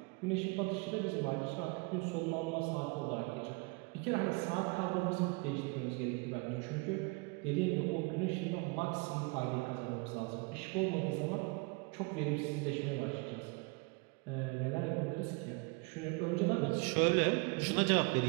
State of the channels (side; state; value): left; quieter; 29.8 dB